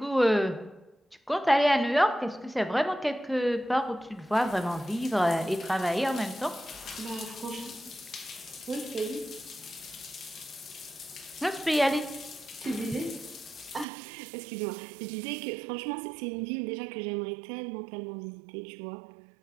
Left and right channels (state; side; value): drops out; left; at 13.9 s